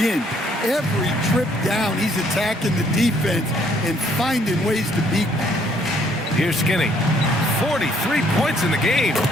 Every trip down, he's attacking the defense and finding ways to beat them. Here's Skinny. 43 points in the game.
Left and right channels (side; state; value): both; normal; correlation 0.65